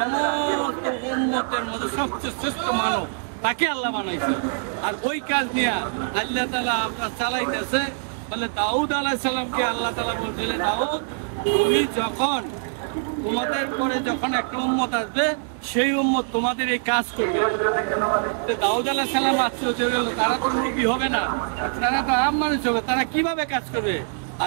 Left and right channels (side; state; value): left; silent; 63 dB below the other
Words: উম্মতের মধ্যে সবচেয়ে শ্রেষ্ঠ মানব তাকে আল্লাহ বানাইছে। আর ওই কাজ নিয়ে আল্লাহ তাআলা আমরা চালাইতেছে। বলে দাউদ আলাইহিস সালামকে আল্লাহ তাআলা বলছিলেন, দাউদ তুমি যখন তোমাদের পরে যখন একটা উম্মত আসবে সেই উম্মত তোমাদের এই কাজ করবে। দাউদ আলাইহিস সালাম আশ্চর্য হয়ে গেল, তারা তো নবী হবে না, তারা তো আম মানুষ হবে, তারা কিভাবে কাজ করবে?